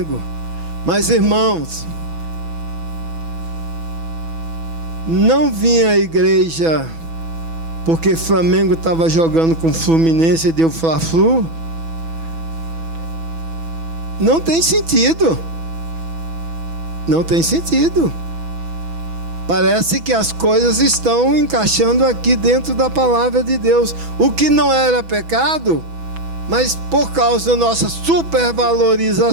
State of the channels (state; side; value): late; left; 6.1 ms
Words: Mas, irmãos, não vim à igreja porque Flamengo estava jogando com Fluminense e deu Fla-Flu. Não tem sentido. Não tem sentido. Parece que as coisas estão encaixando aqui dentro da palavra de Deus. O que não era pecado, mas por causa da nossa